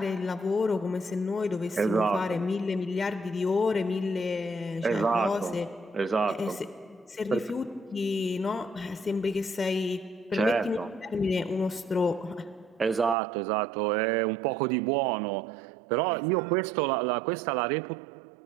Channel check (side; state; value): left; drops out; at 13.2 s